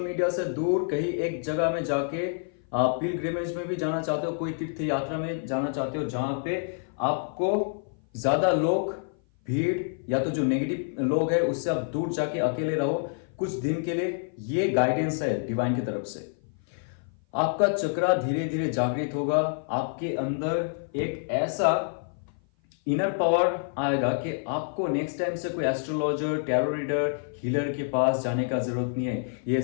से दूर कहीं एक जगह में जाके पिलग्रिमेज में भी जाना चाहते हो, कोई तीर्थ यात्रा में जाना चाहते हो जहां पे आपको ज्यादा लोग, भीड़ या तो जो नेगेटिव लोग हैं उससे आप दूर जाके अकेले रहो कुछ दिन के लिए। ये गाइडेंस है डिवाइन की तरफ से। आपका चक्रा धीरे धीरे जागृत होगा, आपके अंदर एक ऐसा इनर पावर आएगा कि आपको नेक्स्ट टाइम से कोई एस्ट्रोलॉजर, टैरो रीडर, हीलर के पास जाने का जरूरत नहीं है। ये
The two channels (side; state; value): right; silent; 56 dB below the other